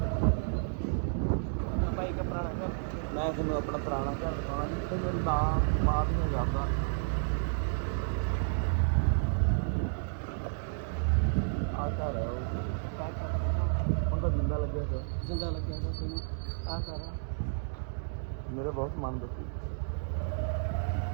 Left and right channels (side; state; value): left; silent; digital silence